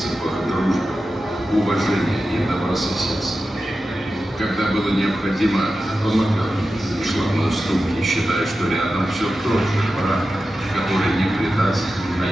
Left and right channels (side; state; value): both; normal; correlation 0.92